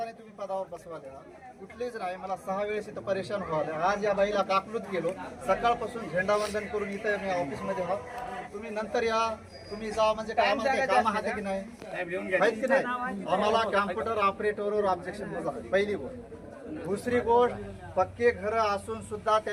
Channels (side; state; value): both; identical; correlation 1.00